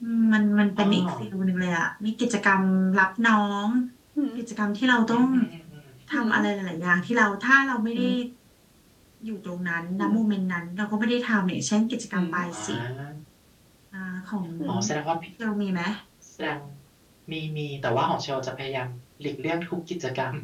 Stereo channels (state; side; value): identical; both; correlation 1.00